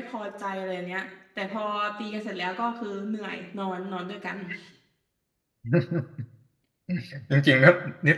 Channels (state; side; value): identical; both; correlation 1.00